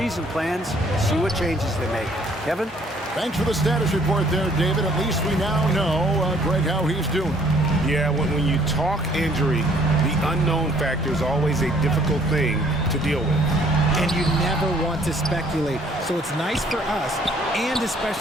plans and see what changes they make. Kevin? Thanks for the status report there, David. At least we now know, Greg, how he's doing. Yeah, when you talk injury, the unknown factor is always a difficult thing to deal with. And you never want to speculate. So it's nice for us, and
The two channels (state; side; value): normal; both; correlation 0.61